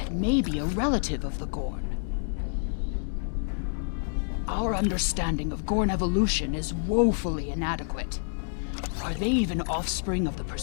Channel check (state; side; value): silent; right; digital silence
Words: may be a relative of the Gorn. Our understanding of Gorn evolution is woefully inadequate. Are they even offspring of the